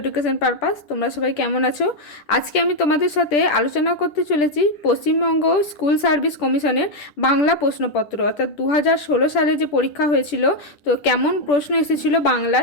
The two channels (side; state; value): right; late; 10 ms